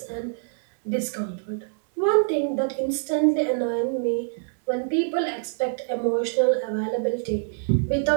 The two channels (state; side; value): silent; left; digital silence